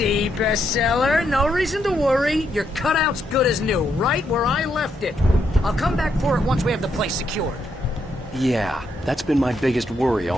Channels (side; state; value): both; normal; correlation 0.78